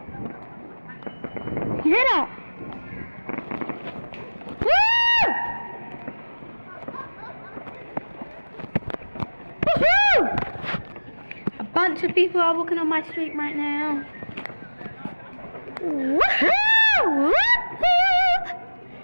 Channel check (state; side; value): inverted; both; correlation -1.00